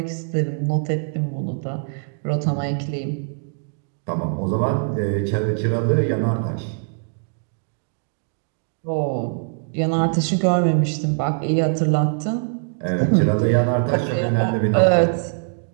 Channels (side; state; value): left; silent; digital silence